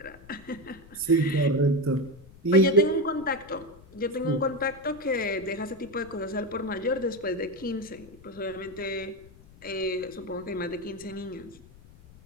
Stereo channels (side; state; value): left; noise; rumble, 22 dB below the sound